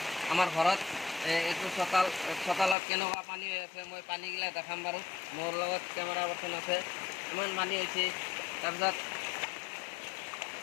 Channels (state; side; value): drops out; right; at 2.8 s